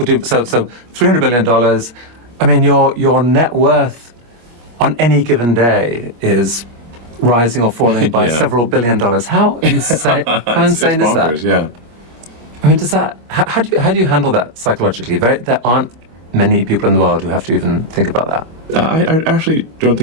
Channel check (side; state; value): left; late; 25 ms